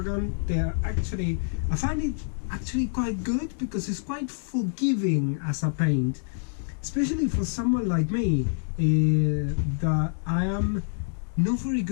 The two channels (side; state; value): right; silent; digital silence